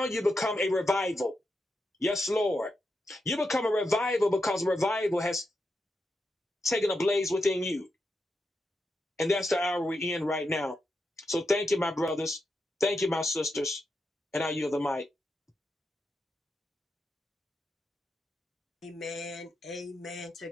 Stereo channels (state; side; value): normal; both; correlation 0.86